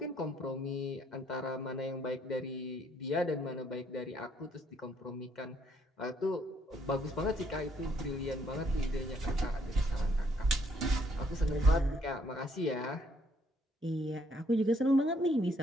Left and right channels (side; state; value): both; normal; correlation 0.68